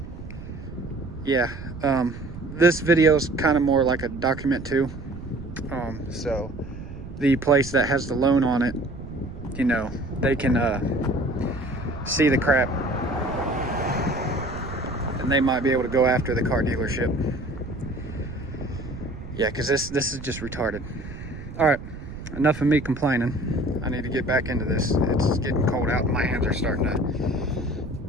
Yeah, this video is kind of more like a document too. So the place that has the loan on it, you know, they can see the crap, and they might be able to go after the car dealership. Yeah, because this is just retarded. All right, enough of me complaining. I need to get back into this. It's getting cold out and my hands are starting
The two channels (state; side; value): noise; right; rumble, 12 dB below the sound